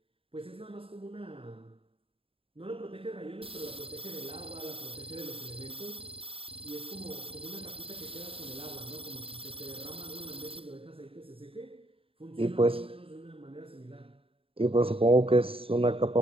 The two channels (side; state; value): left; late; 0.27 ms